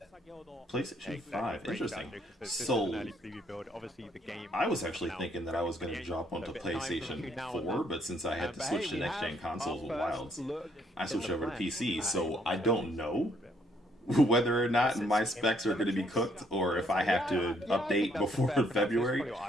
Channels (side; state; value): both; normal; correlation 0.68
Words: PlayStation 5, interesting. So, I was actually thinking that I was going to jump onto PlayStation 4, but since I had to switch to next-gen consoles with Wilds, I switched over to PC, so I don't know whether or not my specs are going to be cooked or if I have to update before February,